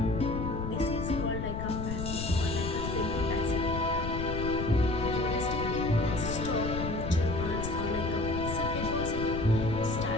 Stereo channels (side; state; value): left; noise; rumble, 4 dB below the sound